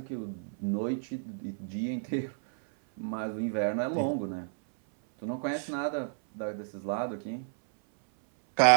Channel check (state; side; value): silent; left; 57 dB below the other